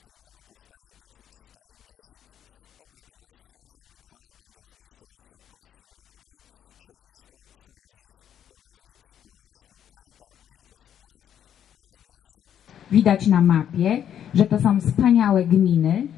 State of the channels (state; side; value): quieter; right; 9.6 dB